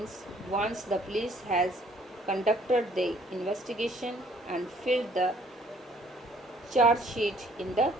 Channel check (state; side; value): normal; both; correlation 0.61